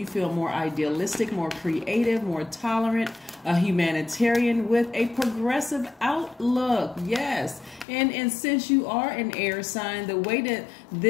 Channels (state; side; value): drops out; right; at 7.9 s